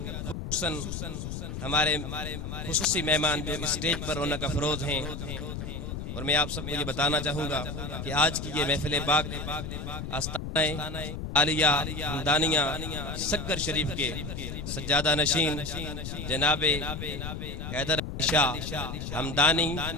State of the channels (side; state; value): left; noise; rumble, 6 dB below the sound